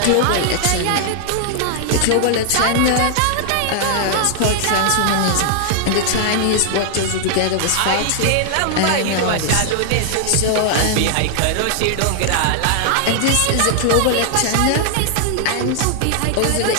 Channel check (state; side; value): different; both; correlation 0.00